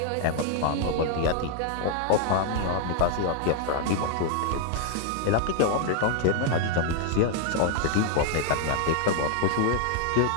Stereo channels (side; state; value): both; different; correlation 0.00